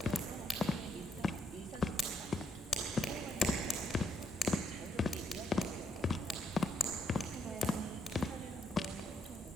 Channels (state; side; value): normal; both; correlation 0.74